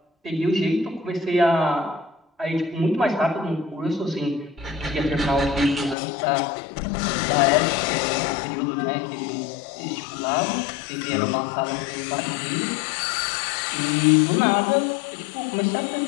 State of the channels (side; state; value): right; drops out; at 6.0 s